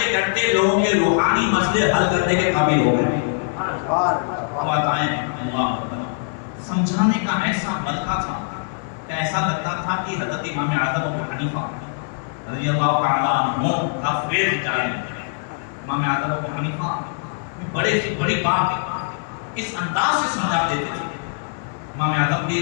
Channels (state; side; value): silent; right; digital silence